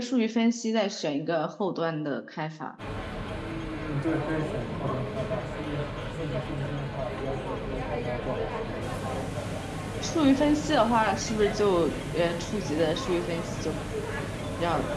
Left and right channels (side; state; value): both; identical; correlation 1.00